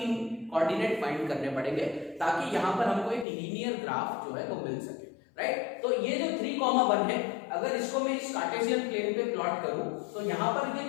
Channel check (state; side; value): drops out; right; at 3.2 s